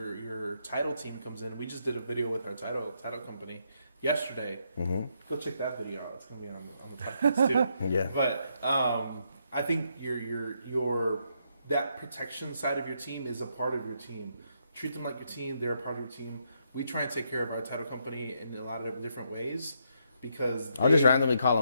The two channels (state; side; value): inverted; both; correlation -0.77